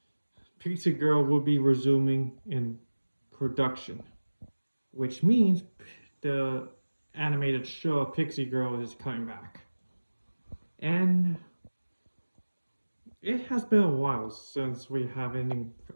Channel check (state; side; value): inverted; both; correlation -1.00